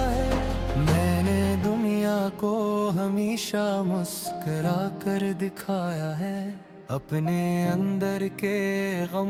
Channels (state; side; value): identical; both; correlation 1.00